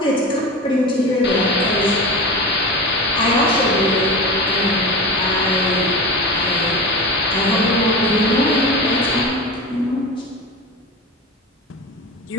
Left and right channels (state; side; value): normal; both; correlation 0.27